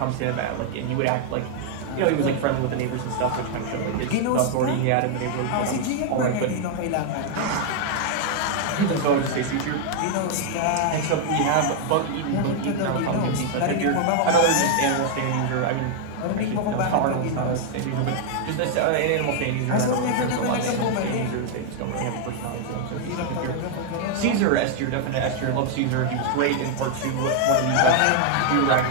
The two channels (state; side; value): different; both; correlation 0.00